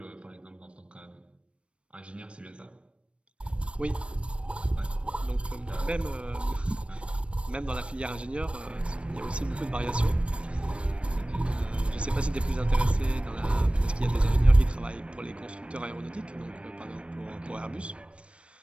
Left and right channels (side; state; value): left; late; 0.060 ms